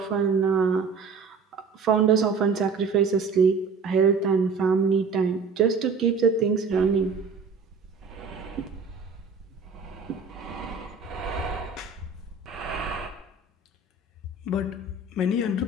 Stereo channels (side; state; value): left; quieter; 4.5 dB